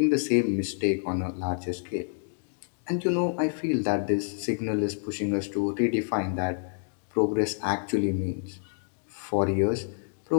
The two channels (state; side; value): silent; right; digital silence